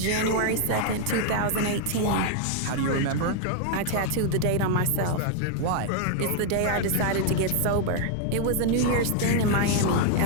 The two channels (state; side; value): different; both; correlation 0.00